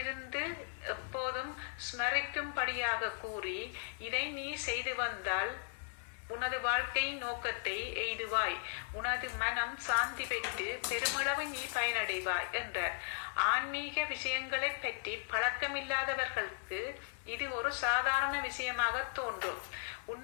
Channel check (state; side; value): silent; right; 53 dB below the other